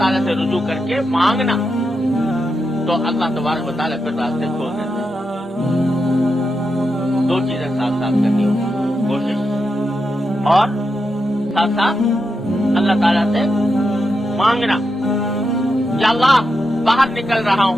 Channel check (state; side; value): normal; both; correlation 0.86